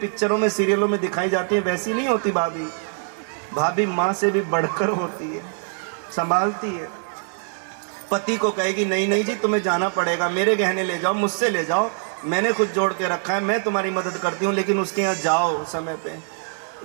में, सीरियलों में दिखाई जाती है, वैसी नहीं होती भाभी। भाभी माँ से भी बढ़कर होती है, संभालती है। पति को कहेगी नहीं नहीं जी तुम्हें जाना पड़ेगा, मेरे गहने ले जाओ, मुझसे ले जाओ, मैंने खुद जोड़ के रखा है, मैं तुम्हारी मदद करती हूँ, लेकिन उसके यहाँ जाओ समय पे।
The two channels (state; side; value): silent; left; 60 dB below the other